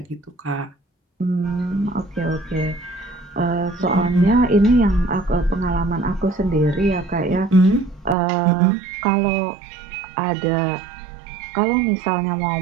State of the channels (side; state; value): left; drops out; at 8.2 s